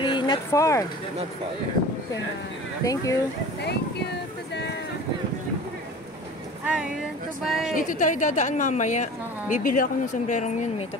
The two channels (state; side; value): normal; both; correlation 0.39